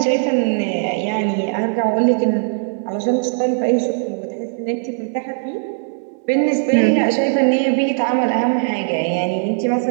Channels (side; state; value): left; silent; digital silence